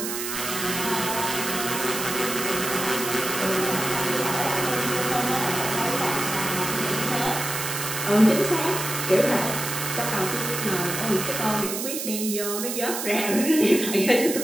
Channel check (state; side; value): noise; right; hiss, 4 dB below the sound